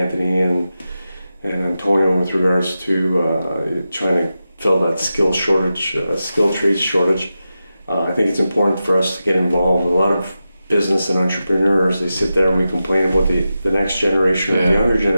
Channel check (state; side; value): inverted; both; correlation -0.91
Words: and Antonio with regards to trying to fill that skill trades shortage. I think it's important for us to get involved. A lot of business and entrepreneurs, they sit there and we complain about the next generation or the younger